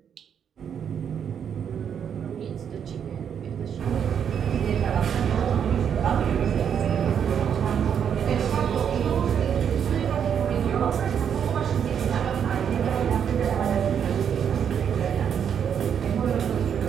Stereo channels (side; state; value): left; quieter; 8.1 dB